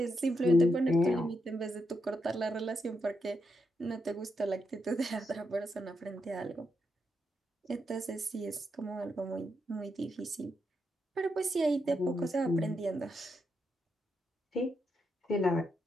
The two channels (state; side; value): normal; both; correlation 0.82